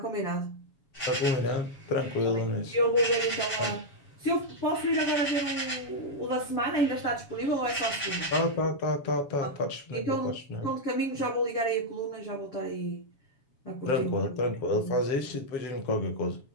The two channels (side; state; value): right; late; 7.3 ms